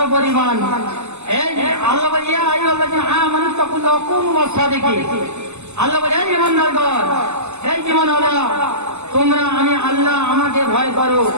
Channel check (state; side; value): late; left; 0.82 ms